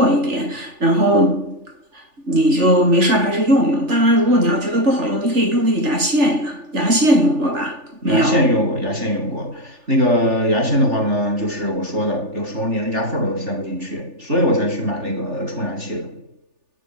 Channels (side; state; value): left; late; 3.4 ms